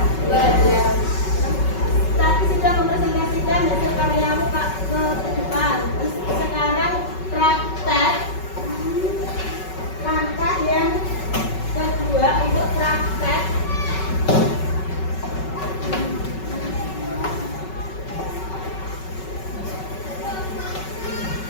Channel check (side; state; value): right; late; 5.3 ms